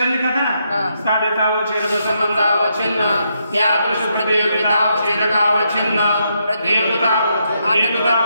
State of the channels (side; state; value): both; inverted; correlation -0.79